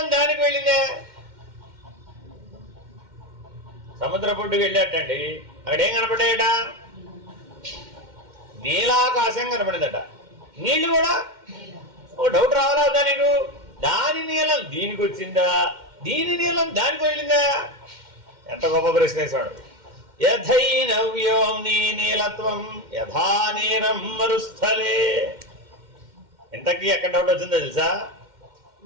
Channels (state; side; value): late; left; 2.1 ms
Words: దానికి వెళ్ళిందా? సముద్ర పొడ్డుకు వెళ్ళేటండి, అక్కడ ఏం కనపడ్డాయట? నీలాకాశం కనపడిందట. నీళ్లు కూడా ఓ డౌట్ రావాలా వద్దా నీకు? దాని నీలం దీనికి వచ్చిందా, దీని నీలం దానికి వెళ్ళిందా? ఎంత గొప్ప ప్రశ్న వేసాడు. యథైనవ్యోమ్ని నీలత్వం యథా నీరం మరుస్థలే. ఇంతకీ ఎక్కడ డౌట్ వచ్చిందో తెలుసా?